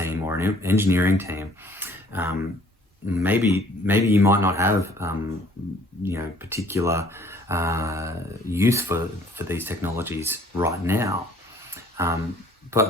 or an engineering team, maybe you might not have particular use for these technologies right now.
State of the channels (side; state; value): both; normal; correlation 0.57